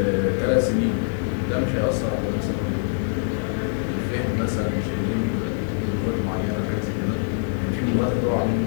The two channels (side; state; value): right; silent; 63 dB below the other